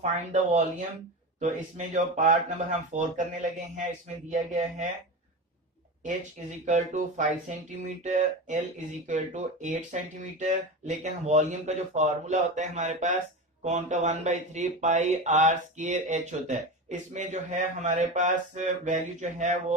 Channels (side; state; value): both; normal; correlation 0.24